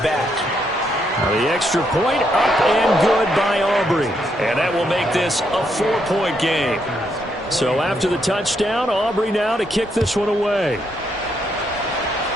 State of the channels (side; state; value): both; normal; correlation 0.76